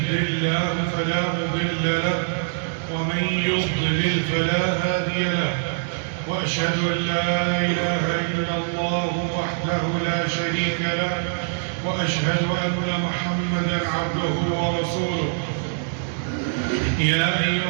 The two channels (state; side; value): silent; left; digital silence